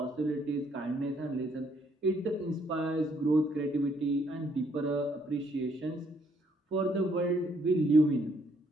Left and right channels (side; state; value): both; normal; correlation 0.69